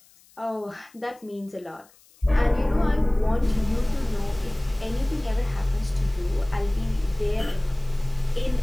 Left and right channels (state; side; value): noise; left; hiss, 29 dB below the sound